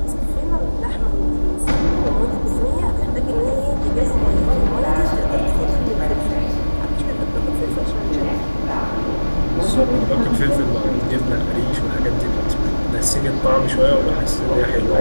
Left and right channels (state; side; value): inverted; both; correlation -1.00